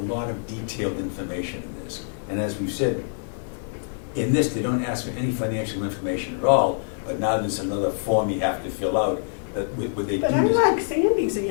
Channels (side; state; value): right; silent; digital silence